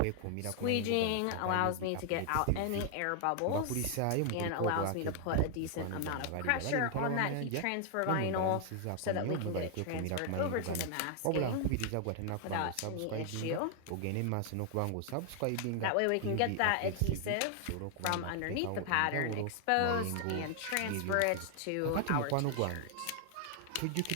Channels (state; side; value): different; both; correlation 0.00